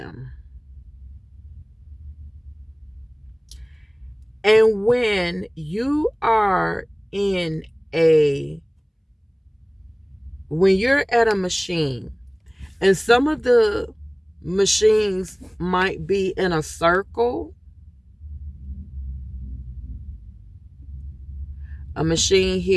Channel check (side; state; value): both; identical; correlation 1.00